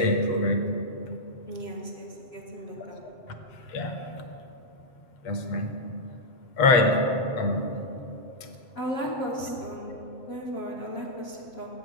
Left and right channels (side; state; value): right; late; 7.7 ms